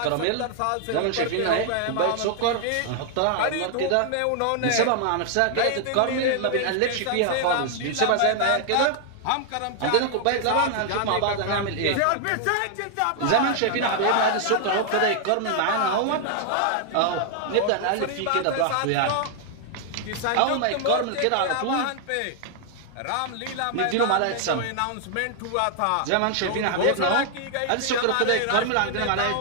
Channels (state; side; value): different; both; correlation 0.00